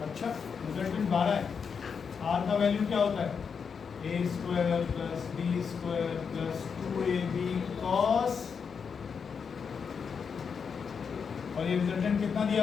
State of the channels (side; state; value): right; quieter; 6.2 dB